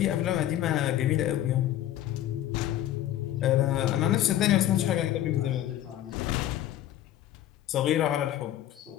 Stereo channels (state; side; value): quieter; right; 12.5 dB